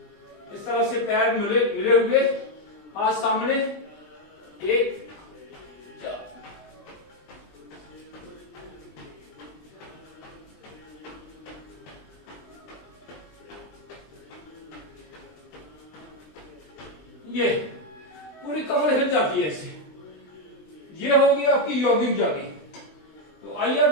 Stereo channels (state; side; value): late; right; 20 ms